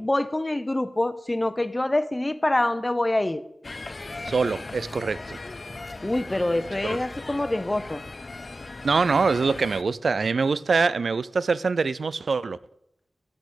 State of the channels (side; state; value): both; normal; correlation 0.94